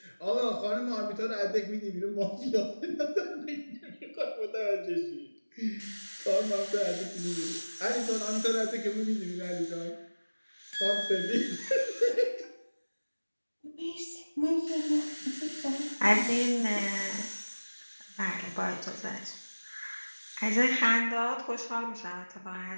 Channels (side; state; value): both; inverted; correlation -1.00